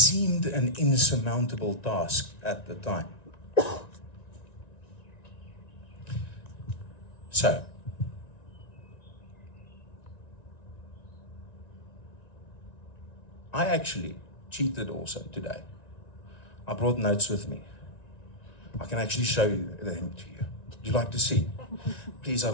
an insurmountable task at the time. So, I actually cheated also today. I brought notes with me. I can actually show them to you. Would you like to see? Please,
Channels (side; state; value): right; late; 1.9 ms